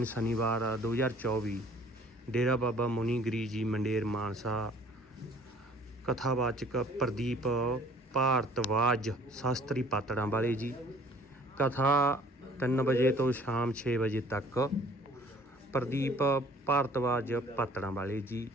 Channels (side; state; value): both; normal; correlation 0.54